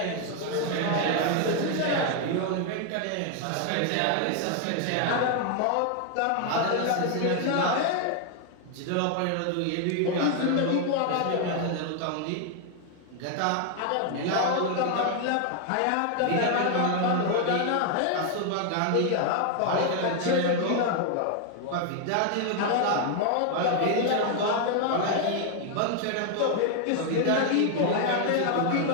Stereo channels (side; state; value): both; different; correlation 0.00